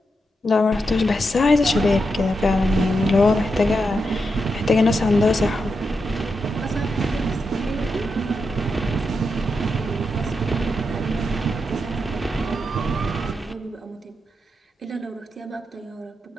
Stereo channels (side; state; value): both; normal; correlation 0.85